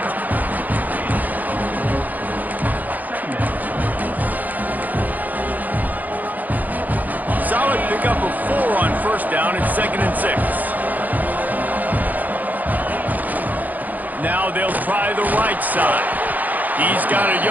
Solid pickup of 4 on first down. It's 2nd and 6. Now they'll try the right side. He's got a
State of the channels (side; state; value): left; late; 0.082 ms